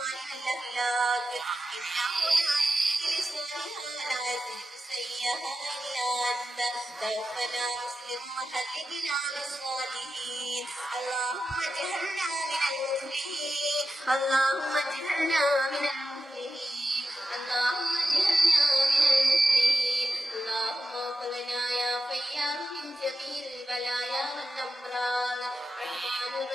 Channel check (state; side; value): normal; both; correlation 0.91